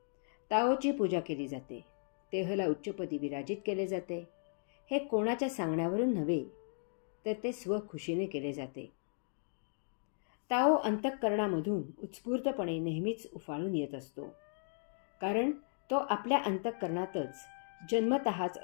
ताओची पूजा केली जाते, तेहला उच्चपदी विराजित केले जाते. हे कोणाच्या सांगण्यावरून नव्हे, तर ते स्वखुशीने केले जाते. ताओ अंतःकरणामधून उत्स्फूर्तपणे नेहमीच उफाळून येत असतो, कारण तो आपल्या अंतःकरणातच जन्मतःच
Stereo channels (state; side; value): silent; right; digital silence